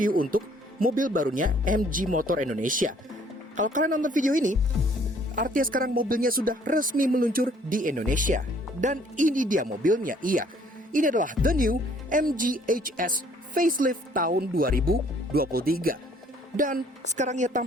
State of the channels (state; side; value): normal; both; correlation 0.60